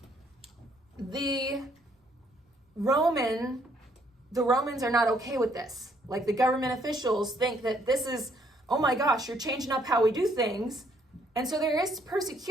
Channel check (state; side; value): normal; both; correlation 0.67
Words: the Romans are not okay with this. Like, the government officials think that this is, oh my gosh, you're changing up how we do things. And so there is